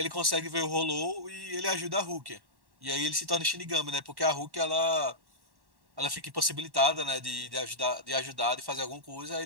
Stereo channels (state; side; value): late; left; 1.1 ms